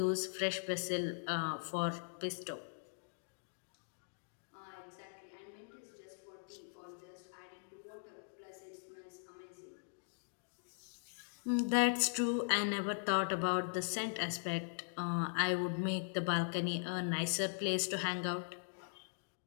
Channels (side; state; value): right; silent; digital silence